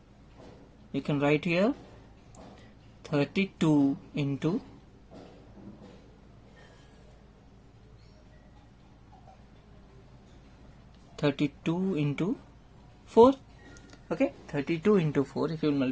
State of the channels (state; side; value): identical; both; correlation 1.00